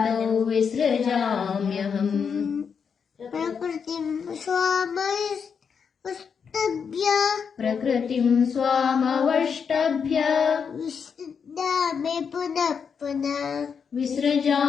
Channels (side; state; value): right; quieter; 6.5 dB